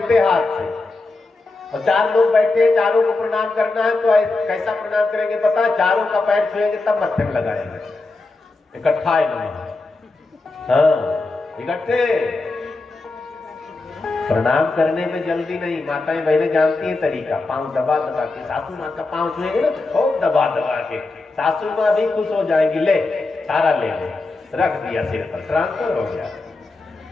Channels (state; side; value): quieter; right; 3.4 dB